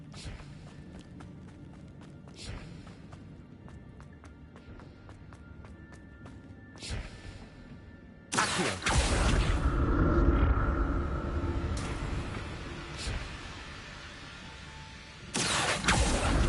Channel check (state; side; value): identical; both; correlation 1.00